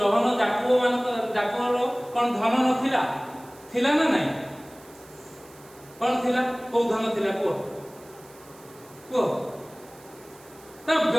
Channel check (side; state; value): right; noise; hiss, 24 dB below the sound